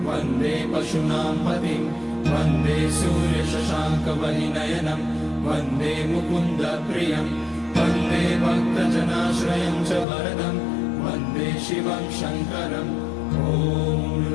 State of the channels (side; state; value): right; drops out; at 10.1 s